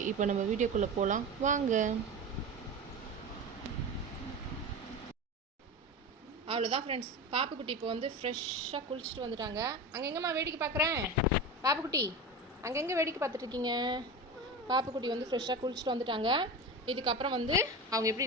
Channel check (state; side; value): normal; both; correlation 0.26